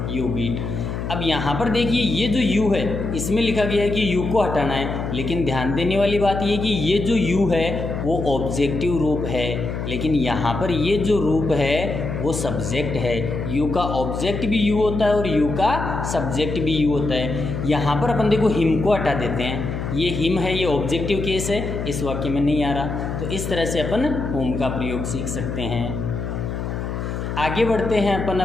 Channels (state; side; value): noise; left; hum, 4 dB below the sound